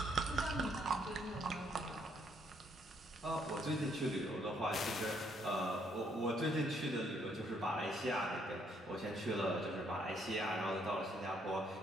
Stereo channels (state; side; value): normal; both; correlation 0.70